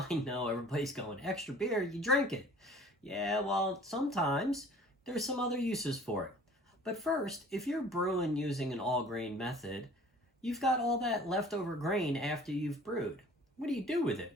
I know everybody's going, extra beer, you drink it. Yeah, well, sometimes there's some other uses for it. But first, if you're brewing using an all-grain method, you've got all that leftover grain after you've brewed. What do you do with it?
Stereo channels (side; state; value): both; normal; correlation 0.49